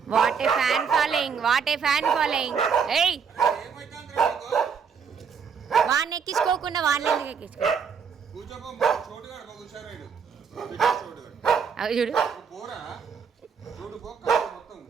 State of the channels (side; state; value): left; quieter; 6.5 dB